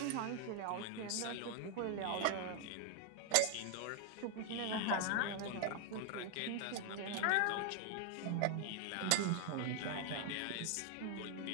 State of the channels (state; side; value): different; both; correlation 0.00